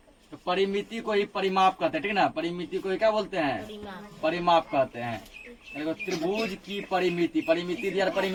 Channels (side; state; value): both; identical; correlation 1.00